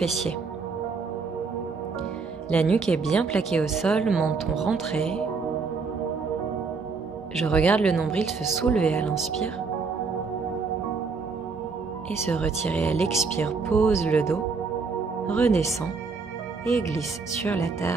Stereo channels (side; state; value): left; quieter; 4.7 dB